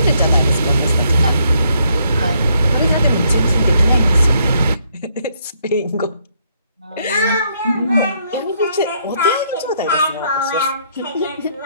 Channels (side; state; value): both; inverted; correlation -0.71